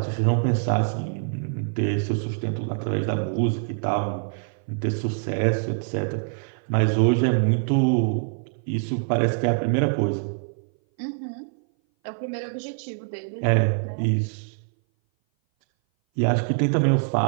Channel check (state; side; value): silent; left; 59 dB below the other